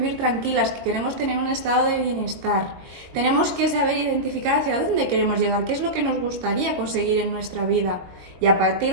tranquilas, que queremos tener un estado de bienestar. Tenemos que saber identificar hacia dónde queremos llegar, qué es lo que nos gustaría conseguir en nuestra vida. Y a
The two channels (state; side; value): late; left; 22 ms